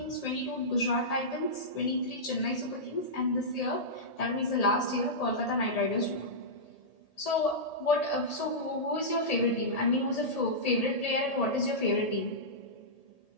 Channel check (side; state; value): right; late; 1.8 ms